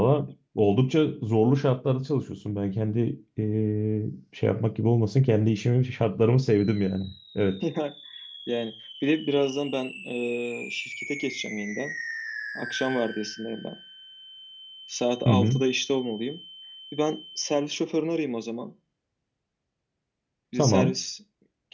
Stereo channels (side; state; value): both; identical; correlation 1.00